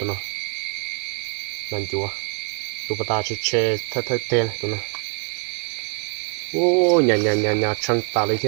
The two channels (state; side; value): quieter; left; 38.8 dB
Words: nó nàn chúa tụi bà ta chỉ chơi thay tên tụi nó ô nhà trăng ta lấy